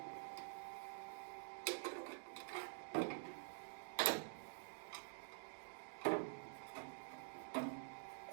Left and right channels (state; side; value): silent; left; digital silence